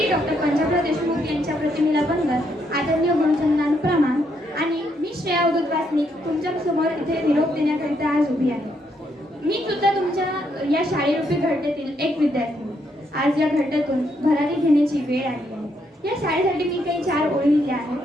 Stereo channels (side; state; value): both; normal; correlation 0.75